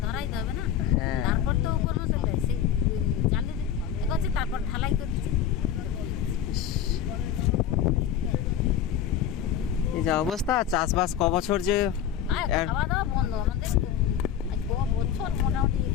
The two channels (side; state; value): right; quieter; 9.3 dB